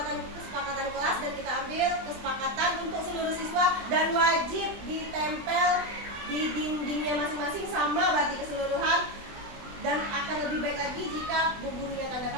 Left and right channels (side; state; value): left; late; 20 ms